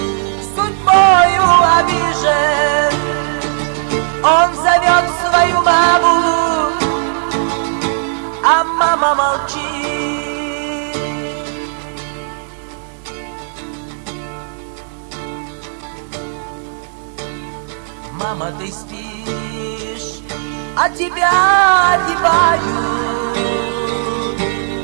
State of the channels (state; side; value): silent; left; digital silence